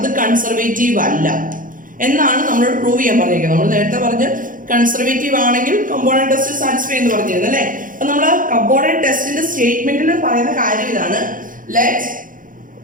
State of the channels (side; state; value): left; late; 0.39 ms